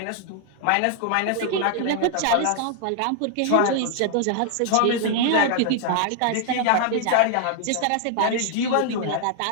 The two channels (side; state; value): both; different; correlation 0.00